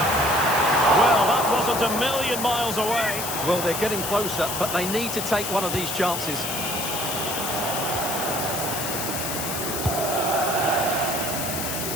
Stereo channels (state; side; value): noise; left; hiss, 4 dB below the sound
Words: Well, that wasn't a million miles away. Well, they're getting closer, but they need to take one of these chances.